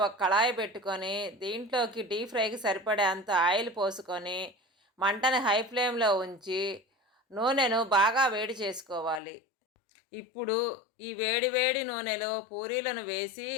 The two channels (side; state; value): right; drops out; at 9.2 s